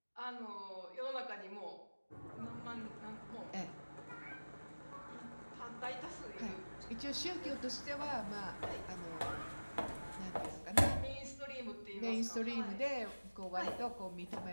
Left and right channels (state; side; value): inverted; both; correlation -1.00